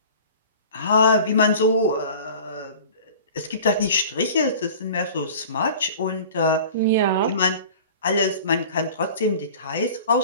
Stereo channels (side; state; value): both; inverted; correlation -0.41